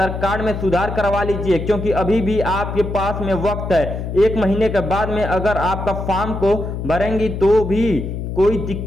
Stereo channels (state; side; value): noise; left; hum, 5 dB below the sound